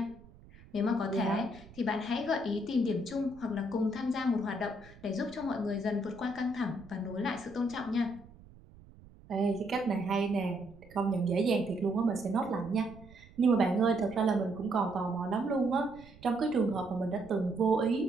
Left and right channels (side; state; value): right; noise; rumble, 22 dB below the sound